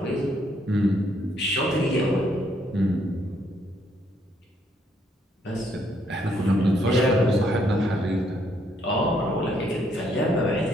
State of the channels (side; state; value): both; normal; correlation 0.71